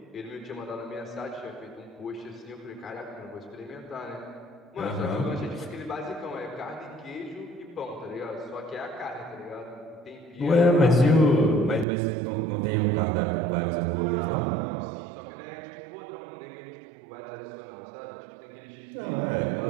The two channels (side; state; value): left; drops out; at 11.9 s